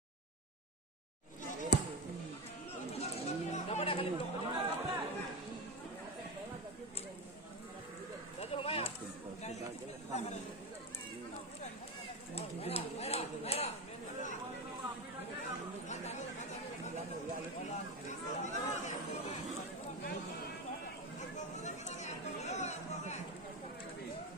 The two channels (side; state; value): both; normal; correlation 0.18